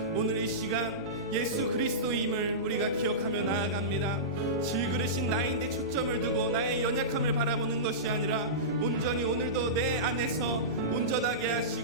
오늘 이 시간 예수 그리스도임을 우리가 기억하며 나아갑니다 질그릇인 나인데 초점을 두고 나의 연약함을 바라보는 것이 아니라 온전히 오늘도 내 안에서 온전하게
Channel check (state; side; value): noise; right; hum, 23 dB below the sound